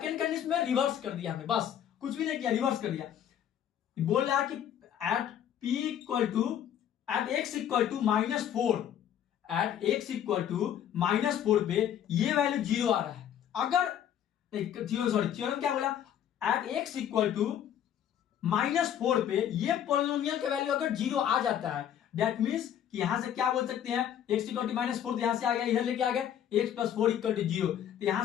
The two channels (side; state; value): right; quieter; 10.0 dB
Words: कंडीशन में रिवर्स कर दिया हमने, बस कुछ भी नहीं किया, रिवर्स कर दिया। बोल रहा है कि at p equal to at x equal to -4, at x equal to -4 पे ये वैल्यू जीरो आ रहा है। अगर थ्योरम क्या बोला, एट x इक्वल टू -4 पे ये पॉलिनोमियल का वैल्यू अगर जीरो आ जाता है, दैट मींस कि यहां से क्या बोल सकते हैं, x इक्वल टू -4 तो यहां से आ गया, इधर लेके आ गए x प्लस 4 इक्वल टू 0, तो